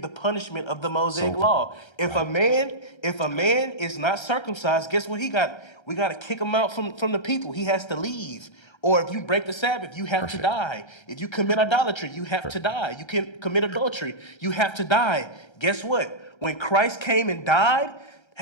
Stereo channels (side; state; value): right; late; 1.3 ms